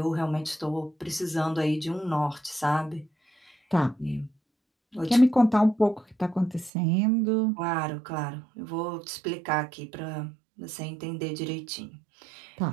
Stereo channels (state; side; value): drops out; left; at 6.7 s